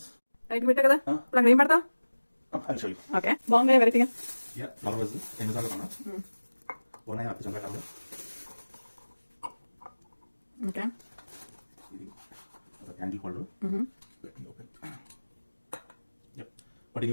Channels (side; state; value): both; inverted; correlation -1.00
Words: Right పెట్టా కదా. ఇప్పుడు అక్కడ ఏం పెడతావు? I'll show you. ఓకే బాగుంది వెరైటీగా. యా నలవజ్ ఎన్నిసార్లు కొన్నా ఉన్నాయి అప్పుడు చంపేటాము. ఓకే ఇది ఒక హ్యాండిల్ హోల్డర్. ఓపెన్. యప్ పట్టింగ్